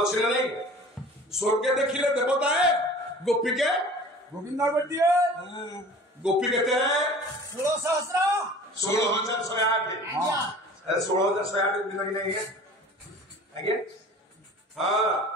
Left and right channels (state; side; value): normal; both; correlation 0.43